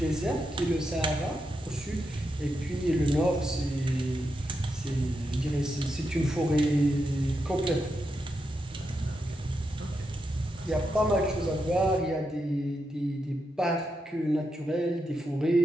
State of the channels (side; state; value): both; normal; correlation 0.85